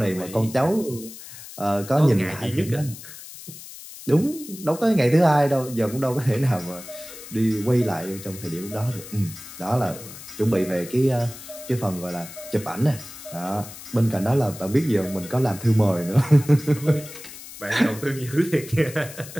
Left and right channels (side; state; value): left; noise; hiss, 15 dB below the sound